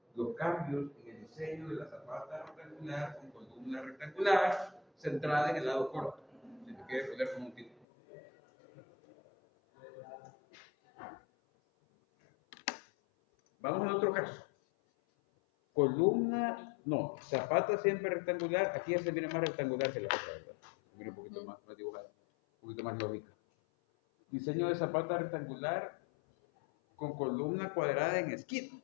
los cambios en el diseño de la zapata rectangular con columna rectangular centrada en el lado corto. Si te quieres poner como un título. Vamos a otro caso. Columna, no, zapata siempre rectangular. Aquí ya se viene más rectangular que la otra, ¿verdad? Se viene un poquito más dibujada, un poquito más lógica. Diseño de zapata rectangular con columna cuadrada en esquina.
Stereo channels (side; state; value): right; drops out; at 7.9 s